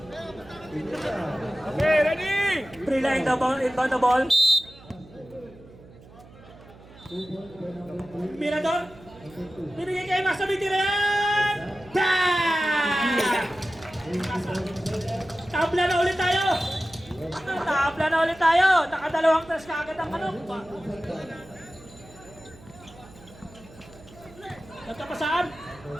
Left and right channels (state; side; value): noise; right; hum, 22 dB below the sound